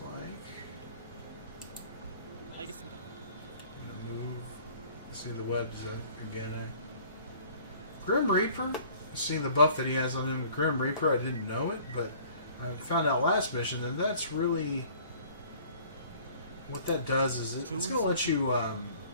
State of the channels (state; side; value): inverted; both; correlation -0.52